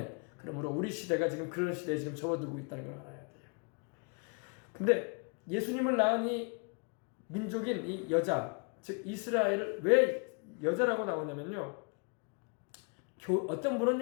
그러므로 우리 시대가 지금 그런 시대에 지금 접어들고 있다는 걸 알아야 돼요. 근데 예수님을 낳은 이 민족인 이 여자, 즉 이스라엘을 왜 여자라고 나오냐면요. 어떤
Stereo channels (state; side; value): quieter; right; 36.4 dB